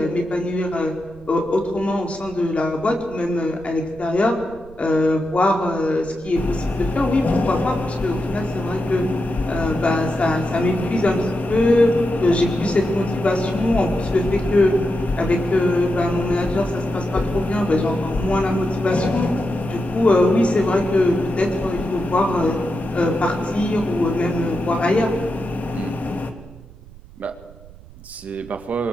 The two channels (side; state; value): right; noise; rumble, 20 dB below the sound